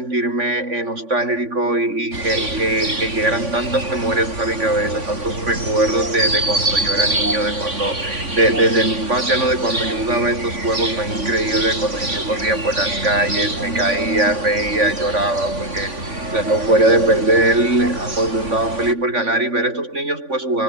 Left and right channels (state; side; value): late; left; 3.5 ms